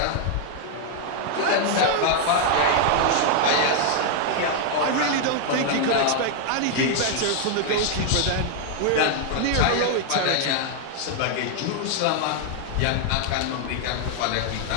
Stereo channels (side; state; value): both; different; correlation 0.00